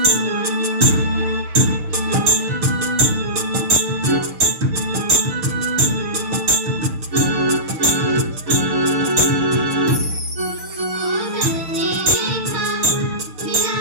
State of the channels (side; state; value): left; late; 6.3 ms